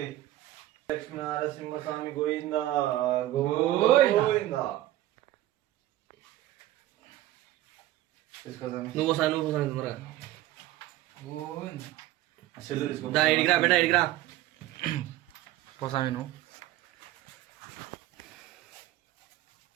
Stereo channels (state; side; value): quieter; left; 15.0 dB